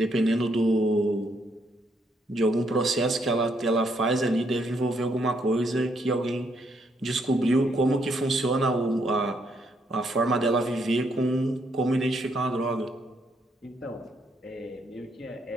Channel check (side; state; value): both; normal; correlation 0.74